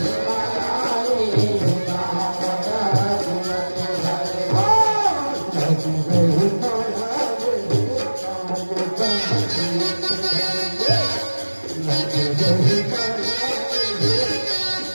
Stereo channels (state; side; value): inverted; both; correlation -1.00